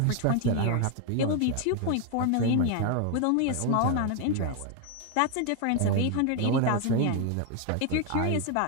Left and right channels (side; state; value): both; different; correlation 0.01